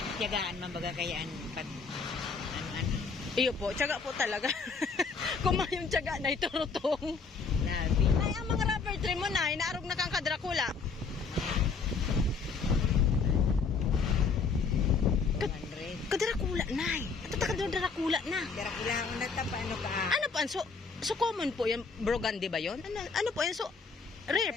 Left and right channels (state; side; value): quieter; right; 4.9 dB